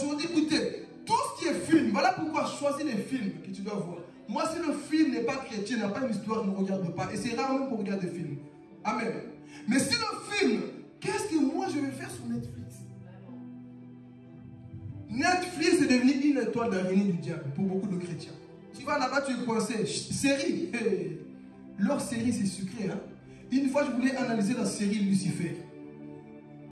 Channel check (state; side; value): identical; both; correlation 1.00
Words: écoutez, tout ce qui est film, voilà pourquoi choisis les films que tu dois voir. Moi, si le film n'est pas chrétien, n'a pas une histoire, ne regarde pas. Et c'est rarement qu'on regarde des films. Amen. Mais si le film, qu'est-ce que moi je vais faire sur Netflix? Netflix est devenu une étoile d'araignée du diable pour beaucoup de chrétiens. Tu vas là-bas, tu es coincé. Série. Leur série, c'est sucré. Hein? Une fois, je voulais analyser la série Lucifer.